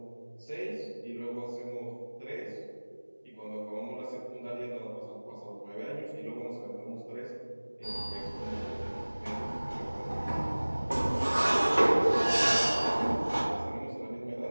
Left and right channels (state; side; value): inverted; both; correlation -1.00